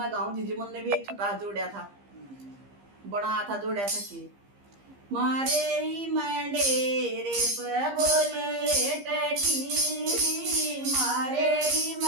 गाँव दीदी मन ने भी एक छोटा जोड़ा था, बना था जोड़ा था कि मारे मंडेरे पे बोले टटीरी, मारे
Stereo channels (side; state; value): left; late; 15 ms